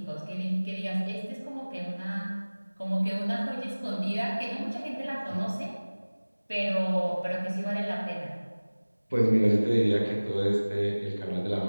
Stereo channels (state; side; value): inverted; both; correlation -1.00